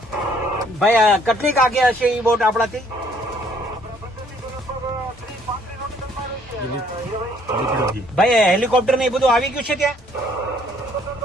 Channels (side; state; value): both; normal; correlation 0.63